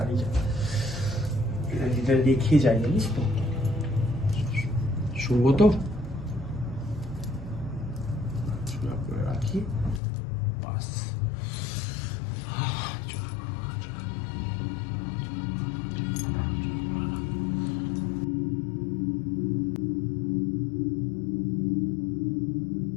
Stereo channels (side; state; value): right; drops out; at 10.0 s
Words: যা, এটা রেখে যাই, জানিস তো? শুনবো তো, করে রাখি বাস।